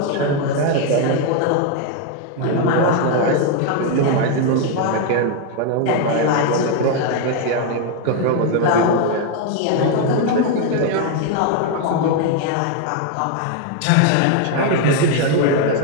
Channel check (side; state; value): both; different; correlation 0.01